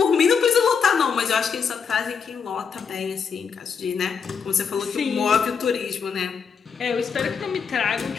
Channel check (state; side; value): quieter; right; 6.2 dB